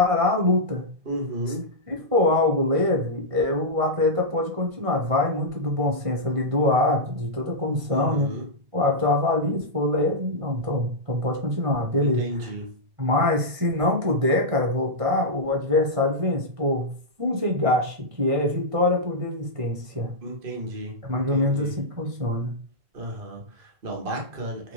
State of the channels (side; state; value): left; late; 1.6 ms